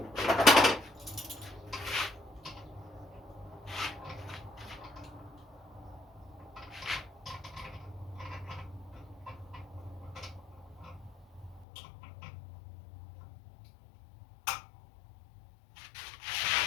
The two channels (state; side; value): drops out; right; at 11.7 s